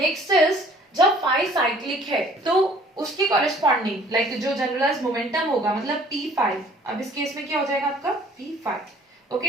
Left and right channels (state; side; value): normal; both; correlation 0.55